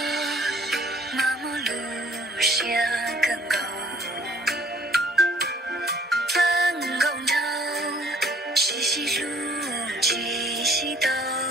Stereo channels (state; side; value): normal; both; correlation 0.58